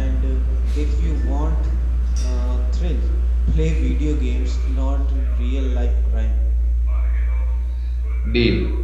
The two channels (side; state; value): both; identical; correlation 1.00